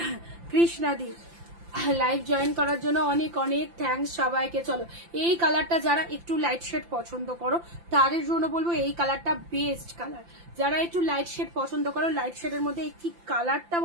কৃষ্ণাদি লাইভ জয়েন করার জন্য অনেক অনেক থ্যাঙ্কস সবাইকে। চলো এই কালারটা যারা একটু লাইট শেড পছন্দ করো তাদের জন্য বলবো এই কালারটা বেস্ট কালার। যারা একটু লাইট শেড পছন্দ করো, লাইট শেডের মধ্যে কি কালারটা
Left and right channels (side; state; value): left; late; 5.8 ms